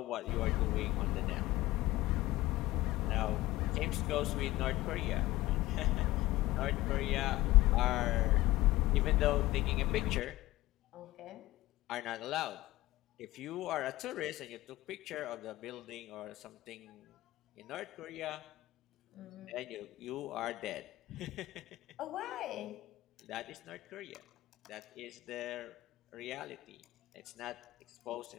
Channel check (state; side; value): quieter; right; 17.6 dB